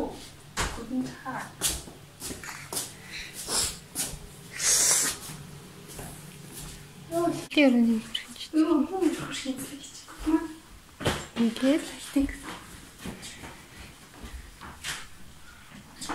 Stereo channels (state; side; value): identical; both; correlation 1.00